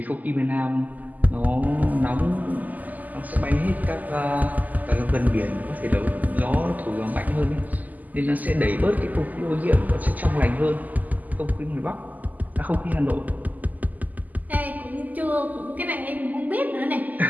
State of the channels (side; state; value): left; late; 0.081 ms